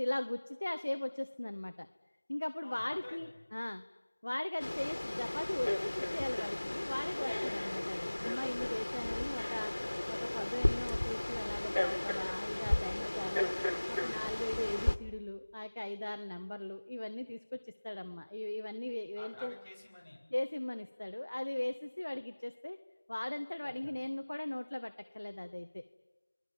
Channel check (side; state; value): both; inverted; correlation -1.00